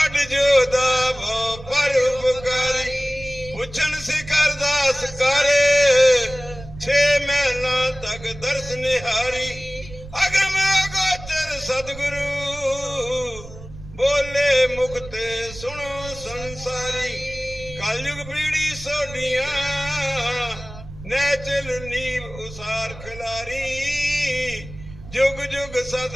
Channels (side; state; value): right; noise; rumble, 15 dB below the sound